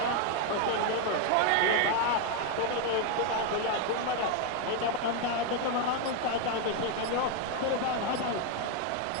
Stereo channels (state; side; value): different; both; correlation 0.01